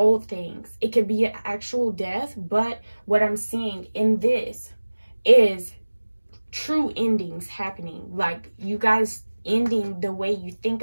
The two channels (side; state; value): both; inverted; correlation -1.00